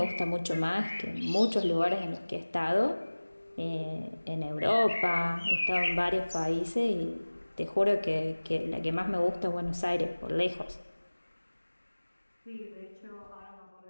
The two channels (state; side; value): inverted; both; correlation -1.00